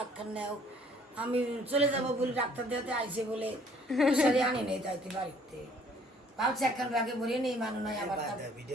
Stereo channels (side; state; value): both; normal; correlation 0.59